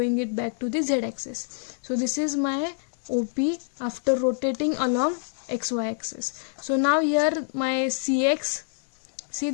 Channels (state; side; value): silent; right; digital silence